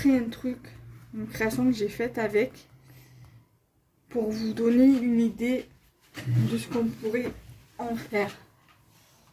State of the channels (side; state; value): both; identical; correlation 1.00